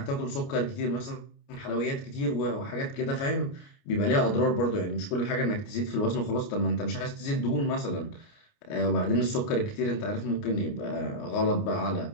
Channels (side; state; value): right; late; 29 ms